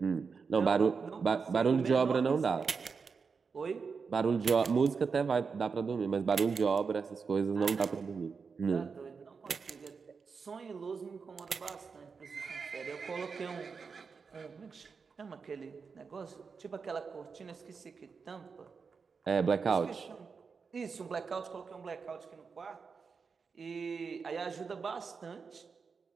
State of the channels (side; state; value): left; quieter; 5.3 dB